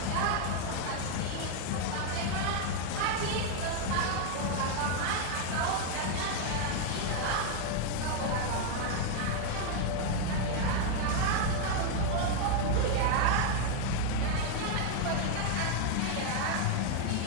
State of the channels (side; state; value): both; different; correlation 0.00